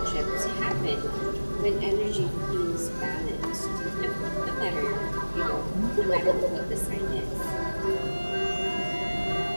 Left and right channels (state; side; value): inverted; both; correlation -1.00